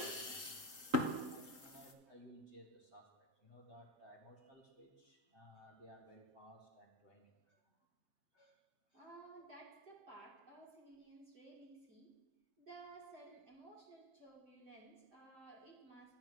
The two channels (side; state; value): left; late; 7.6 ms